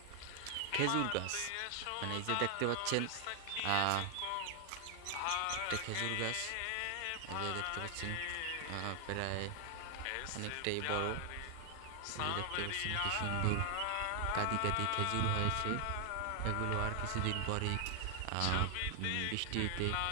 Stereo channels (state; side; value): different; both; correlation 0.00